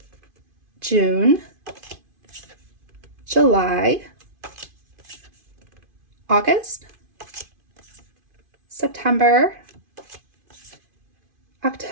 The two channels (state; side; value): late; left; 2.5 ms